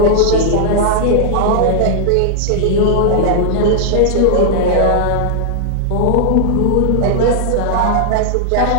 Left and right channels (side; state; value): both; different; correlation -0.01